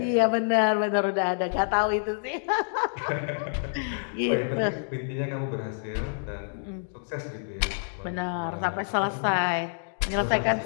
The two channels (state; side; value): silent; right; digital silence